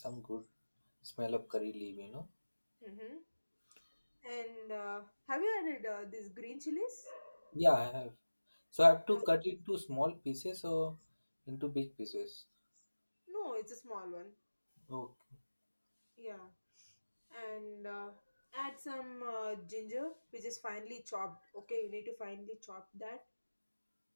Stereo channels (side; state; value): both; inverted; correlation -1.00